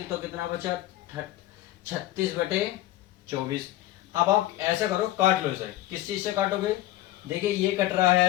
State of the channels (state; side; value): quieter; right; 15.3 dB